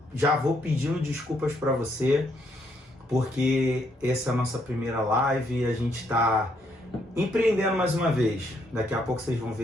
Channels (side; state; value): both; normal; correlation 0.73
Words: Já vou pedindo desculpas para você, porque essa é a nossa primeira live e a gente está empreendendo mais uma vez. Daqui a pouco vocês vão